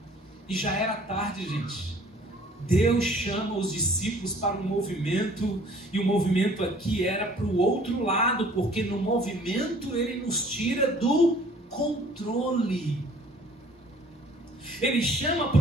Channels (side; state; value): both; normal; correlation 0.54